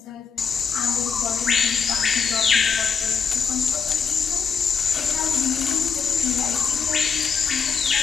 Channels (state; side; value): quieter; right; 6.1 dB